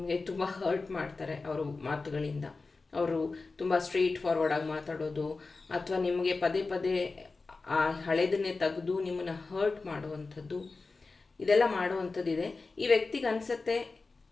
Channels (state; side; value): quieter; right; 3.9 dB